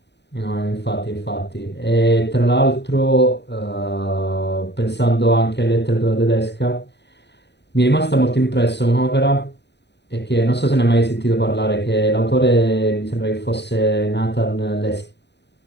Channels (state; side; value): late; right; 0.50 ms